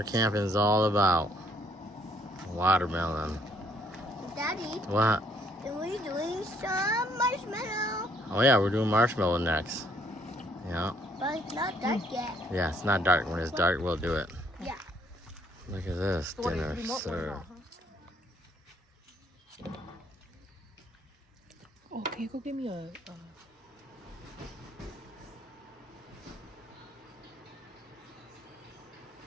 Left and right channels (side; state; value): both; normal; correlation 0.66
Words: camping is all about. Watermelon. Daddy, What? are we doing some marshmallow? Oh yeah, we're doing marshmallow next. Yeah. But it's not dark yet. Yeah, it's not dark. When it's dark, we'll do it. Yeah. Look at this dinner served. Oh, can you go give me a